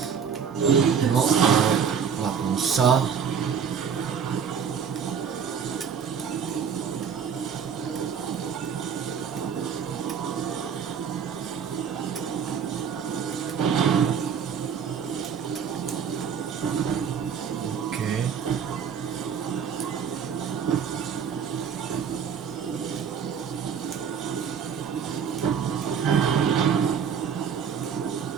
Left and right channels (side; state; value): left; quieter; 7.1 dB